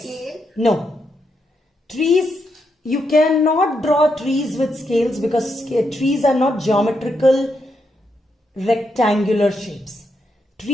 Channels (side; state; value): both; normal; correlation 0.81